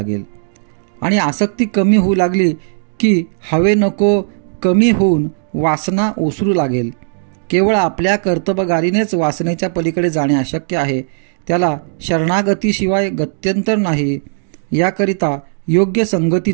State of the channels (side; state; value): left; silent; digital silence